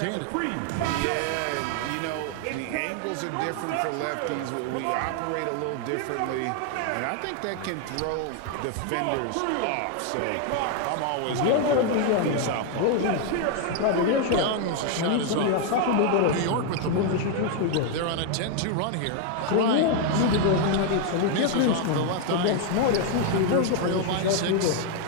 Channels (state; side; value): different; both; correlation 0.00